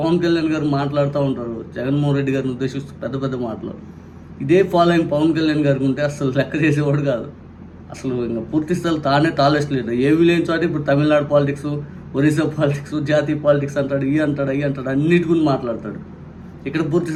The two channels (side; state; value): both; identical; correlation 1.00